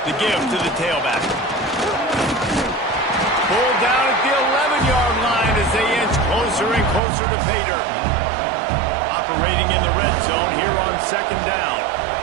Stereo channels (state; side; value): drops out; left; at 7.0 s